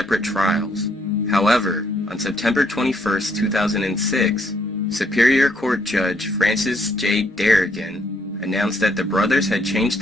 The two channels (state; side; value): normal; both; correlation 0.70